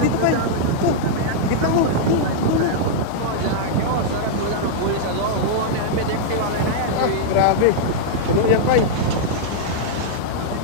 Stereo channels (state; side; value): different; both; correlation -0.02